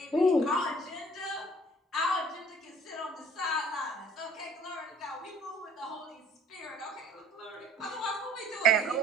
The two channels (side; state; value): both; normal; correlation 0.52